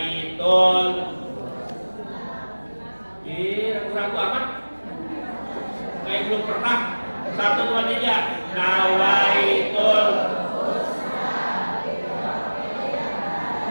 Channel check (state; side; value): inverted; both; correlation -1.00